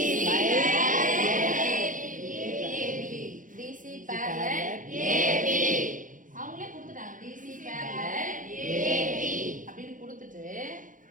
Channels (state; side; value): late; left; 0.38 ms